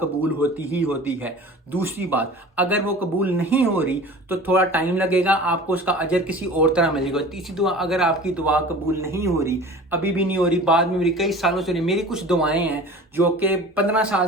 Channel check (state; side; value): normal; both; correlation 0.40